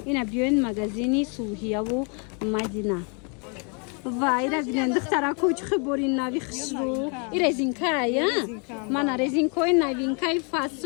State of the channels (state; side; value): quieter; right; 37.1 dB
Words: ина биёин магазини Сулҳияву Мадина. вайра бинен духтарако чихи бори нави хушрӯ и резинкай мана резинкои новинкаи